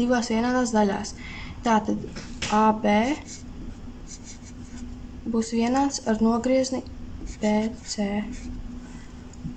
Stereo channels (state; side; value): identical; both; correlation 1.00